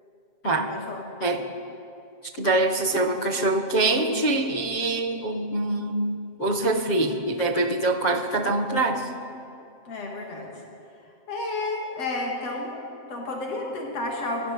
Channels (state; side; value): late; right; 7.6 ms